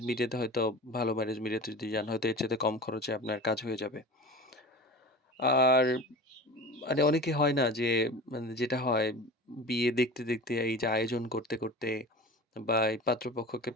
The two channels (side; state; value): both; normal; correlation 0.34